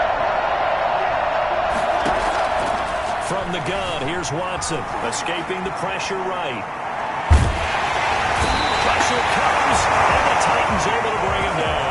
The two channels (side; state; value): both; identical; correlation 1.00